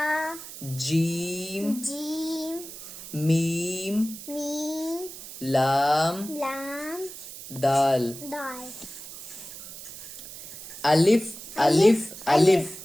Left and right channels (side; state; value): right; noise; hiss, 13 dB below the sound